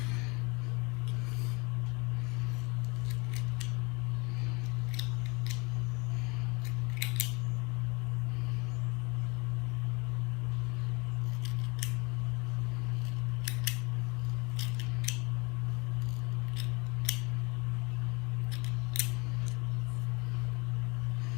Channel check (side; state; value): right; quieter; 27.6 dB